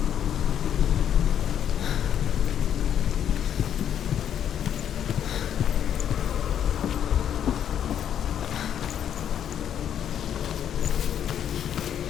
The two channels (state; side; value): quieter; right; 9.5 dB